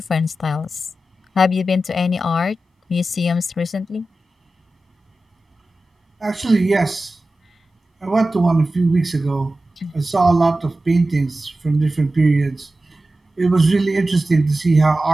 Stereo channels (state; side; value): normal; both; correlation 0.94